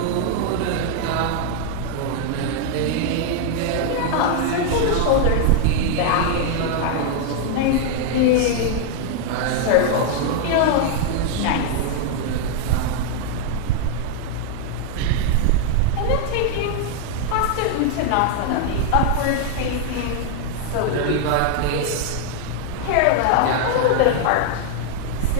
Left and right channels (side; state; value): both; different; correlation 0.00